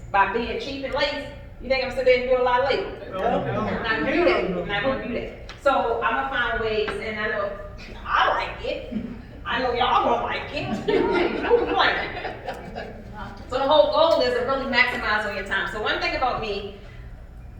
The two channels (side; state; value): both; identical; correlation 1.00